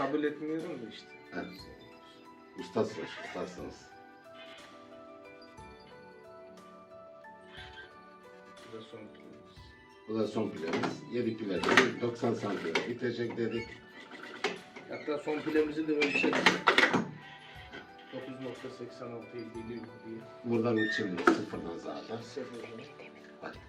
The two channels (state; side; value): identical; both; correlation 1.00